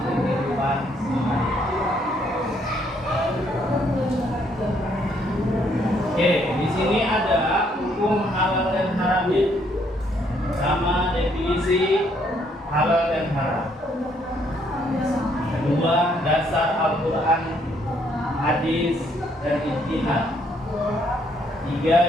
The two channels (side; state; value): both; normal; correlation 0.69